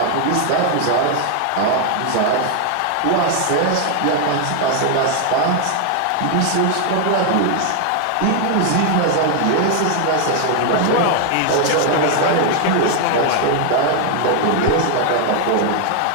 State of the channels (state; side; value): different; both; correlation 0.00